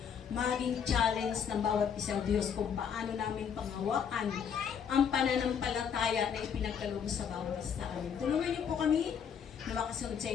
maging challenge ng bawat isa, O Diyos, kung paano namin panghawakan ang pananampalataya na ipinagkaloob sa bawat isa amin. Tulungan niyo po kami na makasunod sa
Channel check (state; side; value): quieter; right; 7.5 dB